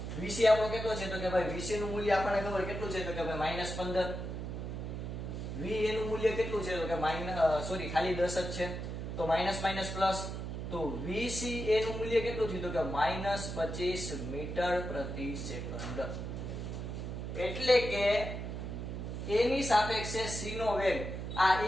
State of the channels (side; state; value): right; noise; hum, 5 dB below the sound